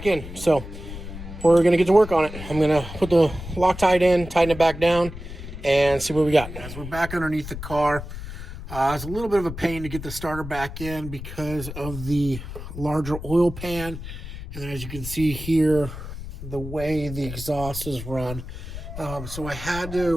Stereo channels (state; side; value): noise; left; rumble, 10 dB below the sound